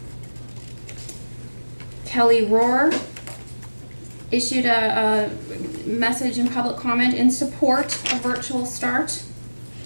Kelly Rohr issued a message in public comment in support of virtual start.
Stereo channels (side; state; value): both; inverted; correlation -1.00